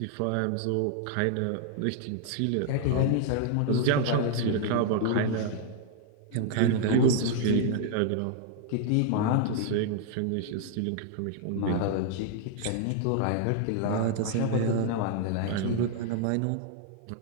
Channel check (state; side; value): different; both; correlation 0.00